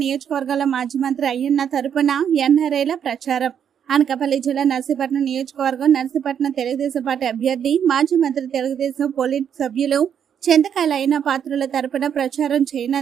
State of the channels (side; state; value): left; quieter; 8.4 dB